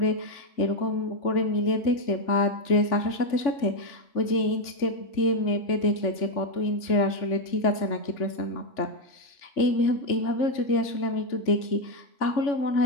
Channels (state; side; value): late; right; 3.5 ms